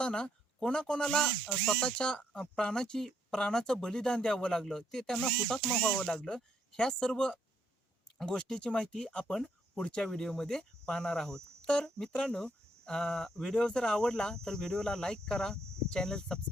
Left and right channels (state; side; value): normal; both; correlation 0.72